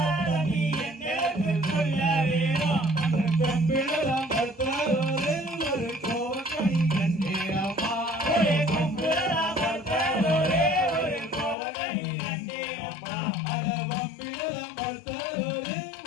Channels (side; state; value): right; drops out; at 11.6 s